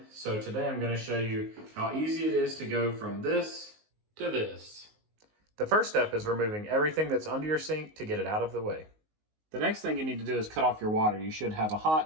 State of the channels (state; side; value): late; left; 19 ms